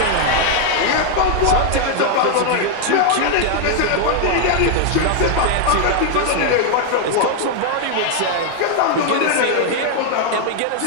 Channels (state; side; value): different; both; correlation 0.00